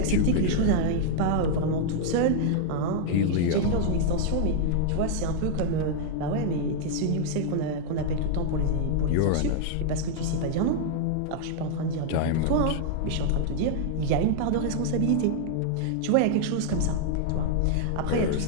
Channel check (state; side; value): different; both; correlation -0.01